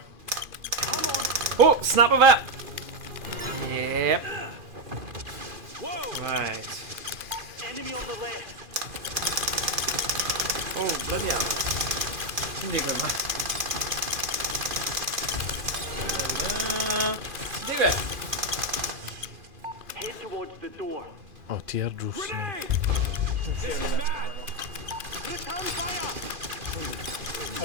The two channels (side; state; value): left; late; 2.4 ms